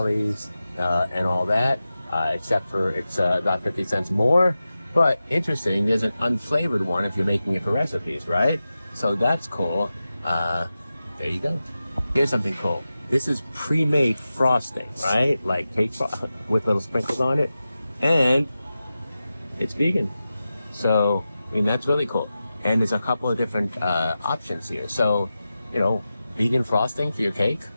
and all that, except for it's about 50 cents more. But interesting, there's an unflavored one if you're making it for recipes, right? So that's cool. There you go. Here's something cool. This is pre-made frosting, right? Like cake with little sprinkles on it. And it's vegan. So, I mean, that's really cool. And there's a couple of different options here. So, you know, vegan frosting for your cake.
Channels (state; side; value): inverted; both; correlation -0.93